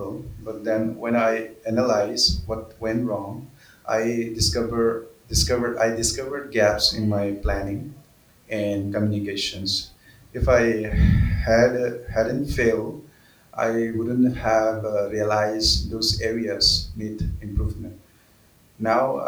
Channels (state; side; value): identical; both; correlation 1.00